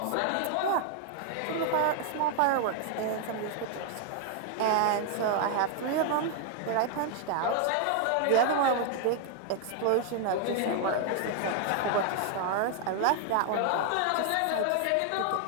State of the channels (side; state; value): both; different; correlation 0.00